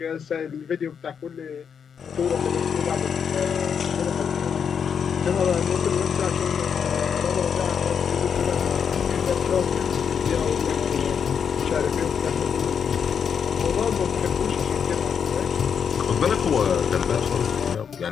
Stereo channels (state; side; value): quieter; right; 7.1 dB